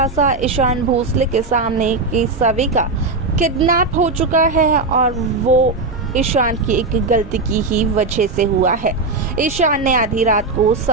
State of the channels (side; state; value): left; quieter; 3.8 dB